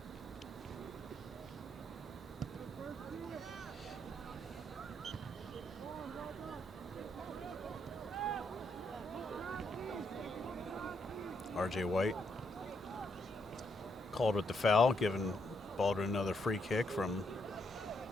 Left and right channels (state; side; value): normal; both; correlation 0.76